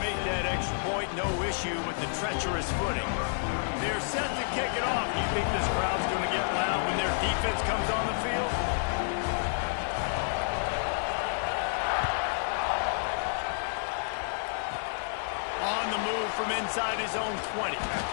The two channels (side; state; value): right; silent; digital silence